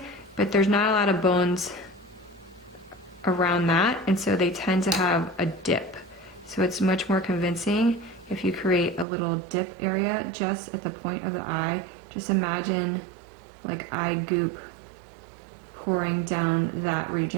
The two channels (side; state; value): left; drops out; at 9.1 s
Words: but there's not a lot of bones around that, and so they tend to have a dip. So it's much more convincing if you create a little dip area just at the point of the eye. Just imagine like eye goop pouring down that